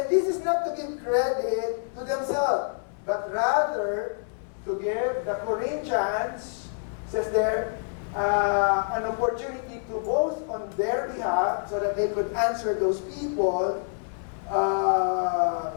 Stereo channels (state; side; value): silent; right; 60 dB below the other